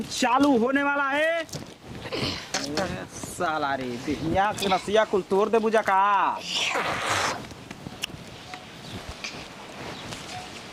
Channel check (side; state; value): both; identical; correlation 1.00